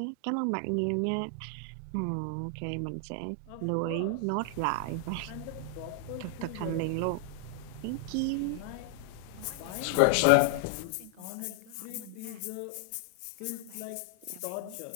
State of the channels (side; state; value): both; different; correlation 0.00